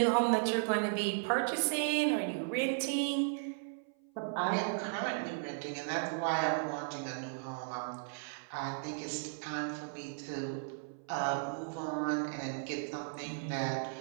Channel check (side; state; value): left; silent; 54 dB below the other